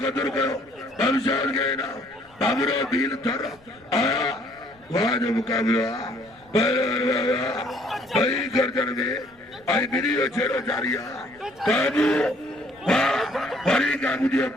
कदर करो कमशाद के ना बाबरो बील थर वहाँ जो मुकाबला भाई गर्दन में आई वीडियो छेड़ो जारिया काबू फरी काबू दियो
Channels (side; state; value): left; noise; rumble, 30 dB below the sound